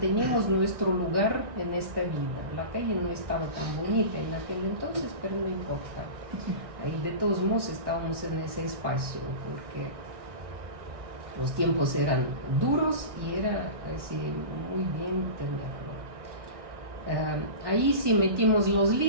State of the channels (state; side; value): late; left; 1.6 ms